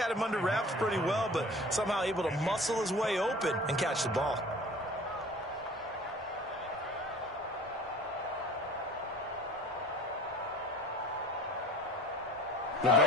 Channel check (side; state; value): both; normal; correlation 0.44